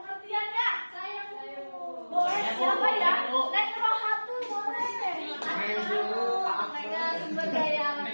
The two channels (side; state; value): both; inverted; correlation -1.00